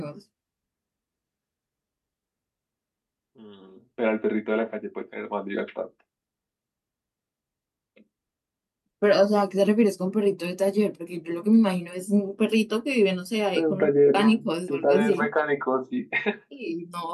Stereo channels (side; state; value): both; identical; correlation 1.00